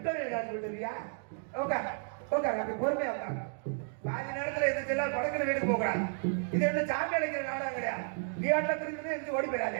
காசு போயிட்டு வரியா? ஓகா ஓகா, அப்படி பொறுமையா உட்காங்க. பாதி நேரத்துல எதிர்த்து படக்குல வீட்டுக்கு போகிறான். இது என்ன சாமி அழைக்கிற நாடகம் கிடையாது. நீ ஆட்டில் திரும்பி எதிர்த்து ஓடி போயிடாத.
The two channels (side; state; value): left; silent; 56 dB below the other